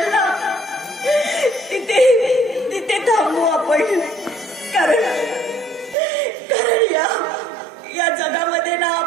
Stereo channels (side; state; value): left; drops out; at 6.0 s